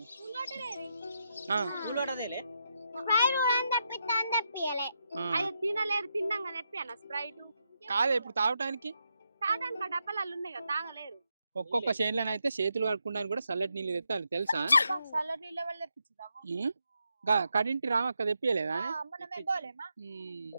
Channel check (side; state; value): both; inverted; correlation -0.82